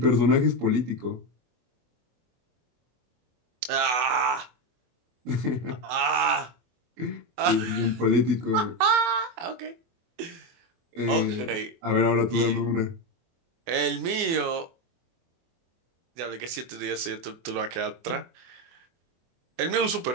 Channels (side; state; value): left; late; 24 ms